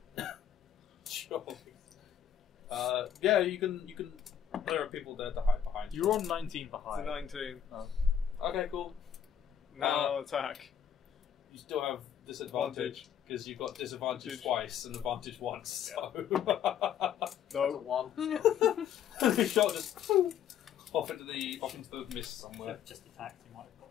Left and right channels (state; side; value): quieter; right; 8.9 dB